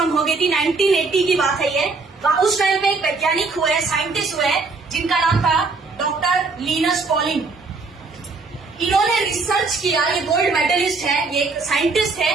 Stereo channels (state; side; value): quieter; left; 4.1 dB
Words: हो गई थी। 1980 की बात है ये। उस टाइम पे एक वैज्ञानिक हुए, साइंटिस्ट हुए, जिनका नाम था डॉक्टर लिनस पॉलिंग। इन्होंने रिसर्च किया, ये गोल्ड मेडलिस्ट है, ये एक साइंटिस्ट है।